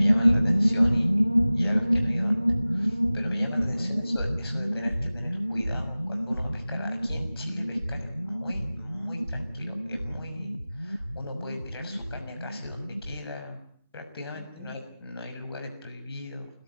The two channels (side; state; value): both; inverted; correlation -0.97